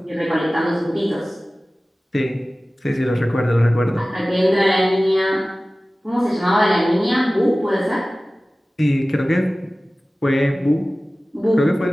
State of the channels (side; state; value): both; normal; correlation 0.97